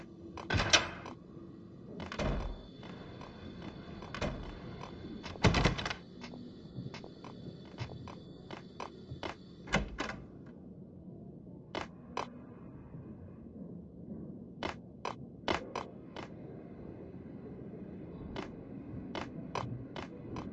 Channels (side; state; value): both; identical; correlation 1.00